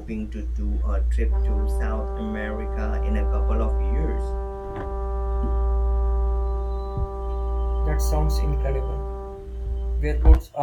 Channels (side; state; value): both; identical; correlation 1.00